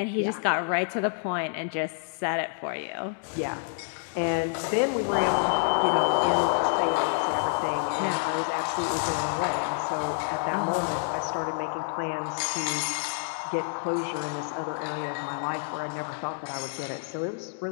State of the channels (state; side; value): silent; right; digital silence